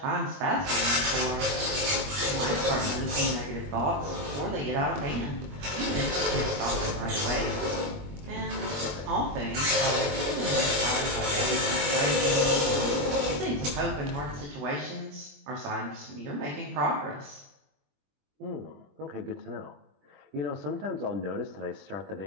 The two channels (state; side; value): late; left; 21 ms